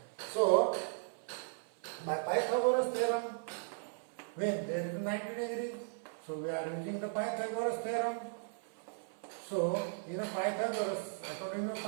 So by Pythagoras theorem, when there is 90 degree, so we are using the Pythagoras theorem. So in a Pythagoras, according to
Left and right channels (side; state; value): left; silent; 53 dB below the other